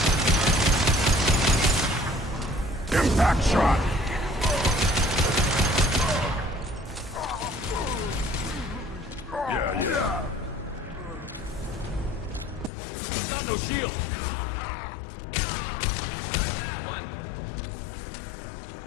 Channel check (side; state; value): right; drops out; at 12.7 s